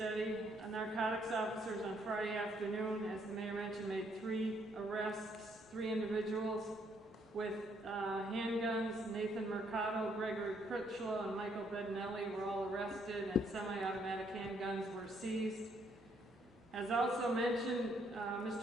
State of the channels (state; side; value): normal; both; correlation 0.70